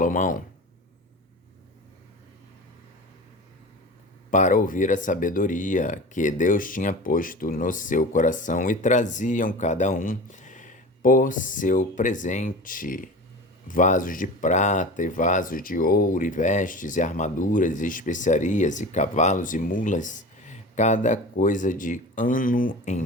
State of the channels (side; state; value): both; normal; correlation 0.34